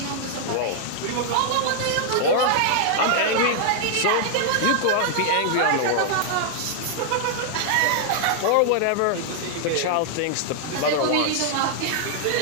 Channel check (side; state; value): both; different; correlation -0.01